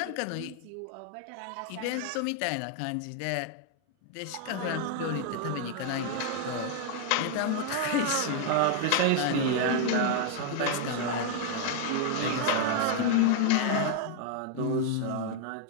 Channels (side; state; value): both; different; correlation 0.00